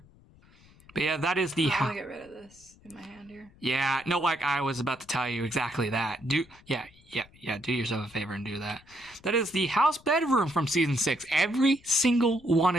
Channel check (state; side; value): noise; left; rumble, 27 dB below the sound